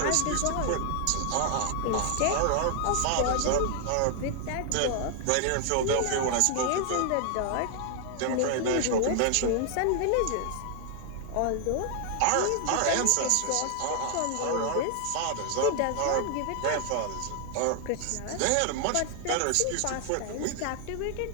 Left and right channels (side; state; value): both; different; correlation 0.00